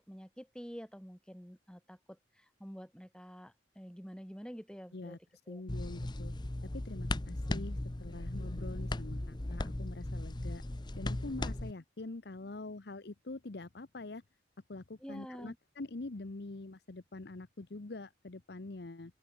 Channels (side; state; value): both; normal; correlation 0.78